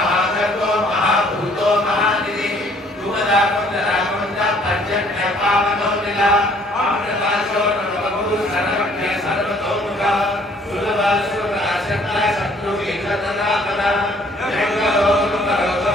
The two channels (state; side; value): normal; both; correlation 0.60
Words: महाभूतो महानिधि धूमदा कुंदरा कुंदा पर्जन्य पावनो नीला अमृताशो नवगुरु सर्वज्ञ सर्वतोमुखा सुलभा सुरता शक्ता शत्रु विघ्ननापना जंगलो नुकरो